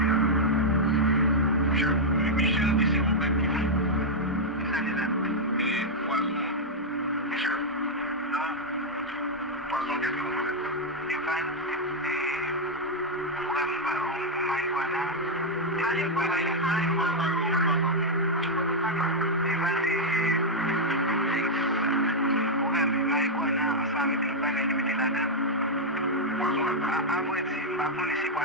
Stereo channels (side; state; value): both; normal; correlation -0.03